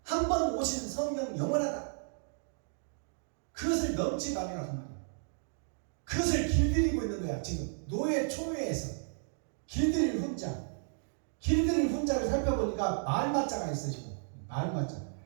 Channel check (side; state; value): left; silent; digital silence